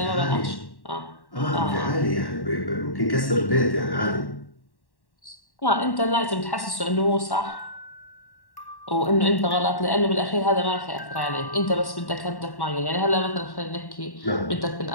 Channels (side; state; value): right; late; 1.1 ms